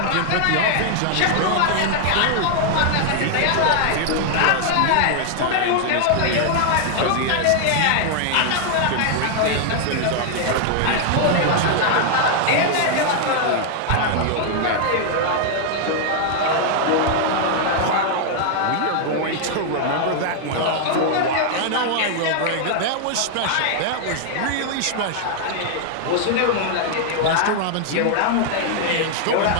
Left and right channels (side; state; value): both; different; correlation 0.00